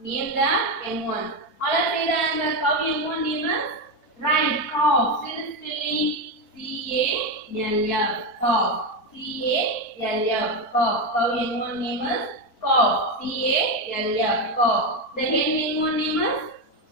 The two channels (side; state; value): right; late; 4.4 ms